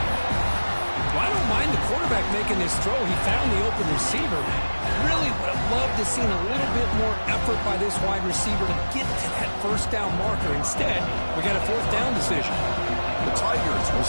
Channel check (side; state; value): both; inverted; correlation -1.00